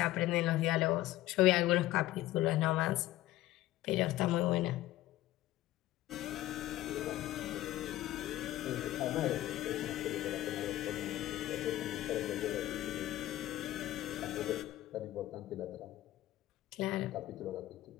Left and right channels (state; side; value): quieter; right; 15.4 dB